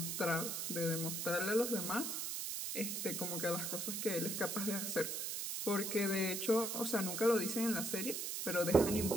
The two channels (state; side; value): noise; right; hiss, 2 dB below the sound